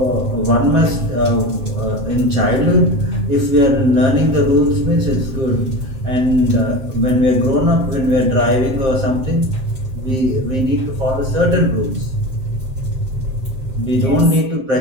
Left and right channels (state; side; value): late; left; 7.6 ms